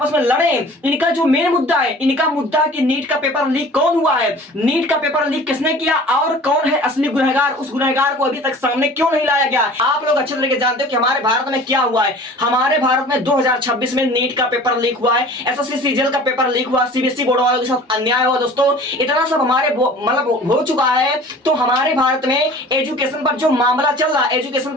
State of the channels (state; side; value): normal; both; correlation 0.44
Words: में लड़े। इनका जो मेन मुद्दा है, इनका मुद्दा है कि नीट का पेपर लीक कौन हुआ है, नीट का पेपर लीक किसने किया और कौन है असली गुनहगार। उस गुनहगार को अभी तक सामने क्यों नहीं लाया गया। आप लोग अच्छे तरीके जानते हो कि हमारे भारत में क्या हुआ है। हमारे भारत में 2026 में नीट का पेपर लीक हुआ है, एसएससी सीजीएल का पेपर लीक हुआ, सीबीएसई बोर्ड वालों के साथ अन्याय हुआ दोस्तों। इतना सब हमारे हो चुका है। तो हमारे भारत में एजुकेशन पर जो मामला चल रहा है, एजुकेशन